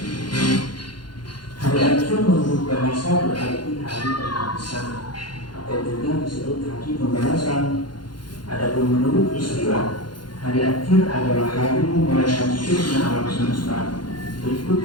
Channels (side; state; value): right; late; 0.71 ms